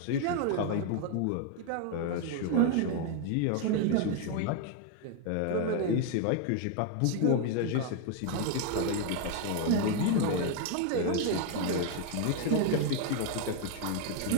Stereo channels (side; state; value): both; different; correlation 0.00